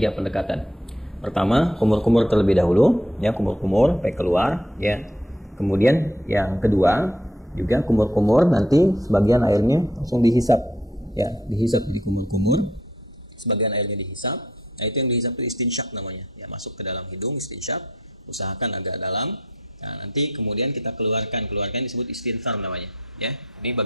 pendekatan. Pertama, kumur-kumur terlebih dahulu ya, kumur-kumur sampai keluar ya. Kemudian yang kedua juga kumur-kumur, nanti sebagian airnya langsung dihisap ya, dihisap di kumur-kumur, sebagian airnya dihisap. Nah, itu yang dihisap itu istinsyak namanya ya, masuk ke dalam hidung istinsyak, usahakan agak dalam. Nah, nanti kemudian kita keluarkan disebut istinthar namanya ya. Ini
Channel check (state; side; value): normal; both; correlation 0.67